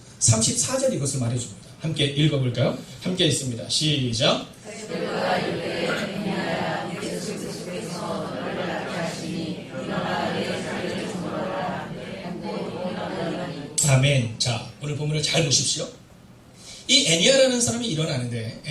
34절 이것을 말해줍니다. 함께 읽어볼까요? 함께 있습니다. 시작. 아멘. 자, 오늘 본문을 잘 보십시오. 이 애니아라는 사람이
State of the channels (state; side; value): identical; both; correlation 1.00